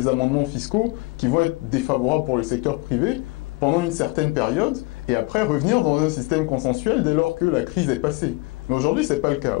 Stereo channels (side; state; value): right; quieter; 23.7 dB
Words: amendements fiscaux qui vont être défavorables pour le secteur privé pendant une certaine période, et après revenir dans un système consensuel dès lors que la crise est passée. Mais aujourd'hui, ce n'est pas le cas.